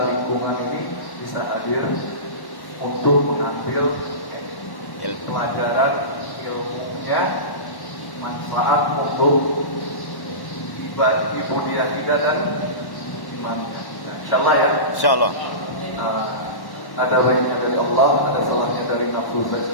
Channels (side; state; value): right; late; 1.1 ms